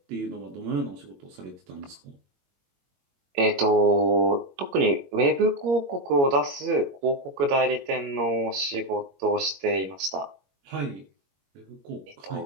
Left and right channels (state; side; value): late; left; 22 ms